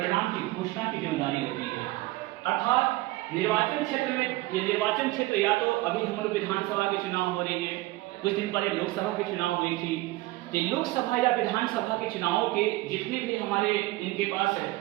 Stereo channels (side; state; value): left; quieter; 19.3 dB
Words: की घोषणा की जिम्मेदारी होती है। अर्थात निर्वाचन क्षेत्र में, ये निर्वाचन क्षेत्र या तो अभी हम लोग विधानसभा के चुनाव हो रही है, कुछ दिन पहले लोकसभा के चुनाव हुई थी, तो लोकसभा या विधानसभा के चुनावों के जितने भी हमारे इनके पास